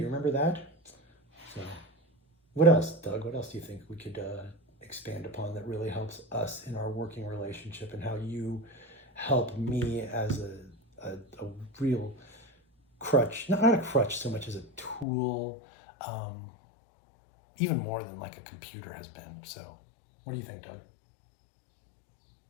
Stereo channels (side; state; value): right; drops out; at 15.1 s